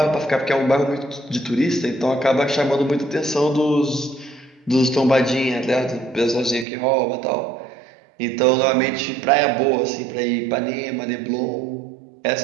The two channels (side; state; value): left; drops out; at 6.7 s